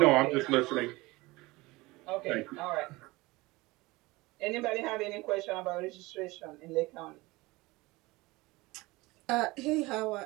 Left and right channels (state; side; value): quieter; left; 21.7 dB